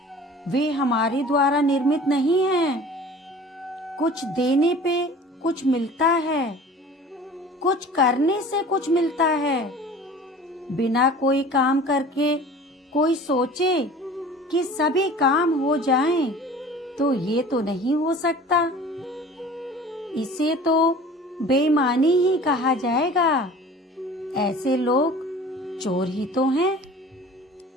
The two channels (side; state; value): both; normal; correlation 0.43